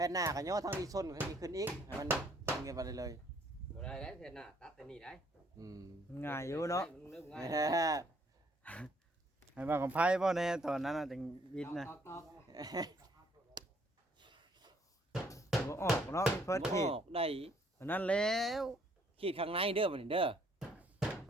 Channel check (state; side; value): normal; both; correlation 0.65